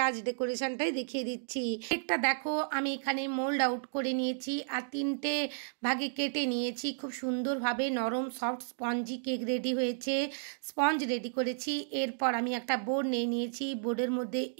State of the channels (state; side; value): silent; left; digital silence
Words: আজ ডেকোরেশনটাই দেখিয়ে দিচ্ছি। কেকটা দেখো আমি এখানে মোল্ড আউট করে নিয়েছি আর 3টে ভাগে কেটে নিয়েছি। খুব সুন্দরভাবে নরম সফট স্পঞ্জি কেক রেডি হয়েছে। স্পঞ্জ রেডি করেছি। এরপর আমি একটা বোর্ড নিয়ে নিয়েছি। বোর্ডের মধ্যে